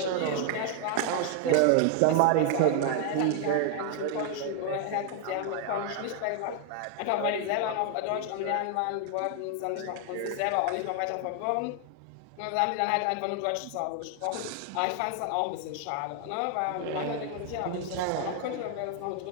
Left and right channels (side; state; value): both; different; correlation 0.00